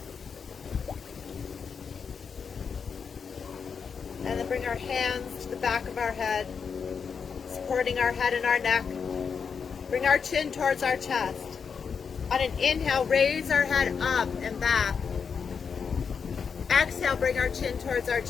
And then bring our hands to the back of our head, supporting our head and our neck. Bring our chin towards our chest. On an inhale, raise our head up and back. Exhale, bring our chin towards our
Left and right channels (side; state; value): right; quieter; 6.2 dB